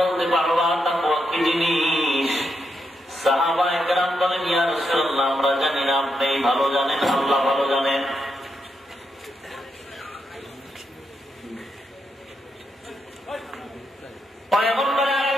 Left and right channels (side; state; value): both; normal; correlation 0.82